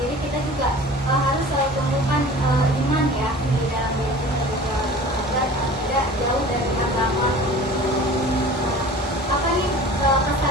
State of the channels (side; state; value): both; normal; correlation 0.42